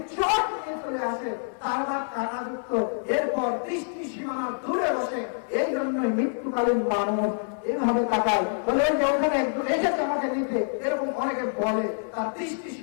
চট নিয়ে চলে আসে, তার কাঁটাযুক্ত। এরপর দৃষ্টি সীমানা দূরে বসে। এই জন্যই মৃত্যুকালীন মানুষ এইভাবে তাকায়, বলে যে ওখানে একজন এসেছে আমাকে নিতে, এরকম অনেকে বলে, তার দৃষ্টি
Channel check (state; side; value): silent; right; 58 dB below the other